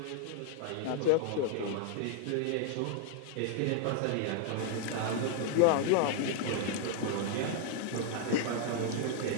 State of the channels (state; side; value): different; both; correlation 0.00